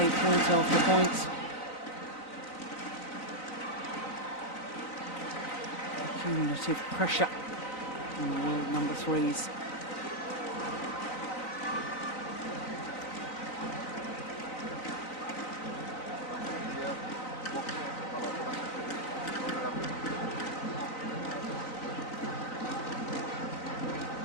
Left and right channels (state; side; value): late; right; 3.9 ms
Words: point after point. Cumulative pressure on the world number 3s.